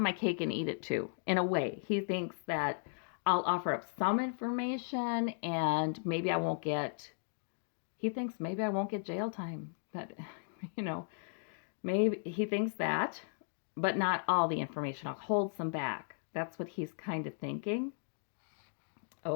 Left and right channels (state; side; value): silent; right; digital silence